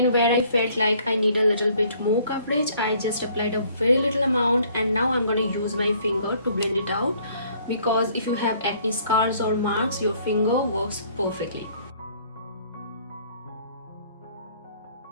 where I felt like I need a little bit more coverage, I just applied a very little amount, and now I'm going to use my finger to blend it out, because if you have acne scars or marks, your finger works perfectly.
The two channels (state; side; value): inverted; both; correlation -0.60